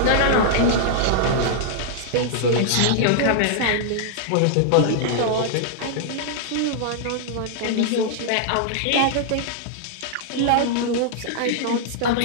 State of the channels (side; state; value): both; different; correlation -0.01